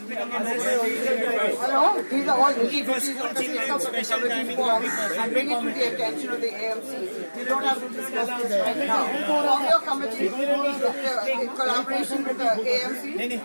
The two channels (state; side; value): inverted; both; correlation -1.00